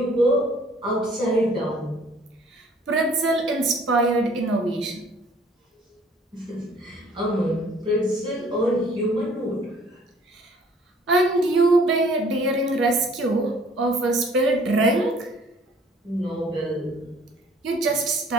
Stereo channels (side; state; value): both; normal; correlation 0.56